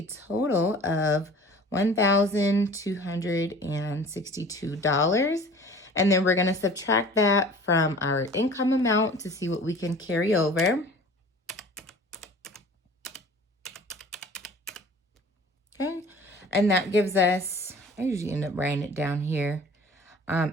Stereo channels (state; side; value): normal; both; correlation 0.45